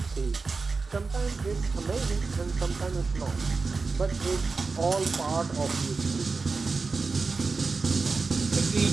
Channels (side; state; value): left; quieter; 4.3 dB